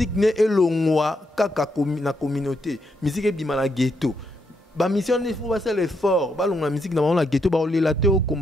ne elongwa kaka na communauté musique e bima na ghetto ba mission il faut faire l'effort ba longa musique na la ghetto baolela te au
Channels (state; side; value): normal; both; correlation 0.79